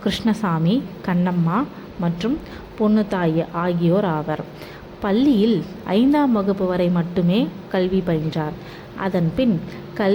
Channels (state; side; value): identical; both; correlation 1.00